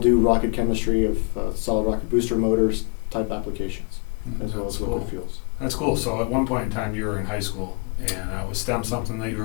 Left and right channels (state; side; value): quieter; right; 34.3 dB